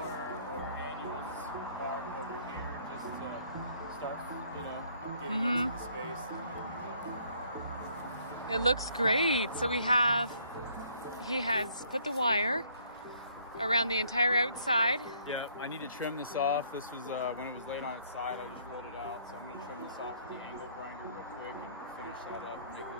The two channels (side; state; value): both; inverted; correlation -0.64